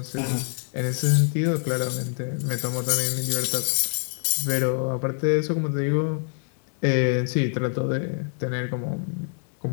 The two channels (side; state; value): right; silent; 61 dB below the other